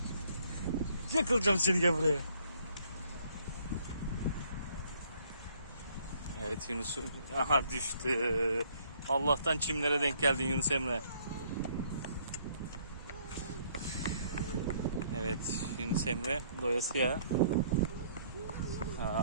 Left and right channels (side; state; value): both; inverted; correlation -0.64